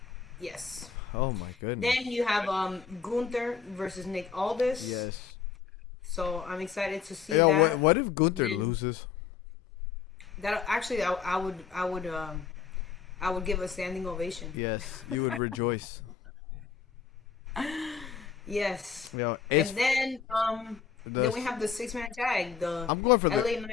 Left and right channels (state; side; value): quieter; right; 6.6 dB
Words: Yes. Oh my goodness. Then you have Gunther versus Nick Aldis. Yes. So I'm excited to see Yo, that. what if Gunther loses? That actually, I would give a standing ovation. Yes, you would rejoice. Yes. Yo, and then we have the 6-man tag. I'm going for LA Knight.